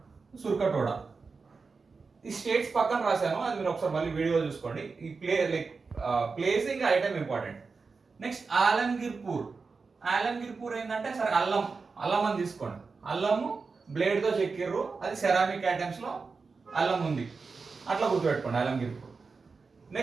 సుర్కటోడ. ఈ స్టేట్స్ పక్కన రాశాను, అది మీరు ఒకసారి మళ్ళీ వీడియో చూసుకోండి. ఈ ప్లేసింగ్ ఐటమ్ ఇంపార్టెంట్. నెక్స్ట్ ఆలంగిర్పూర్. ఆలంగిర్పూర్ ఏంటంటే సరే అల్లం అని తీసుకోండి. అల్లము బ్లేడ్తో చెక్కిర్రు, అది సెరామిక్ ఐటమ్స్ లో అల్లం ఉంది, అట్లా గుర్తుపెట్టుకోండి ఆలంగిర్పూర్.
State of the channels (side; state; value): left; quieter; 4.6 dB